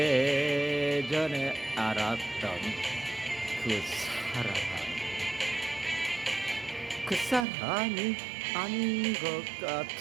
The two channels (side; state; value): left; drops out; at 7.5 s